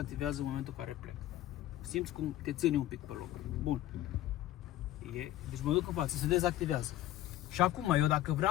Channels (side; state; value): right; quieter; 13.8 dB